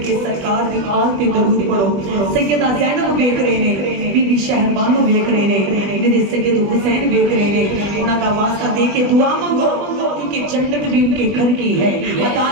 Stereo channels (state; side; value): late; left; 20 ms